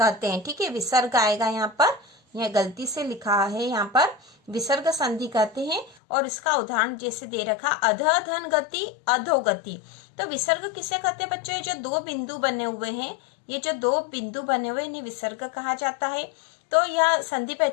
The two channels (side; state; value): right; drops out; at 6.0 s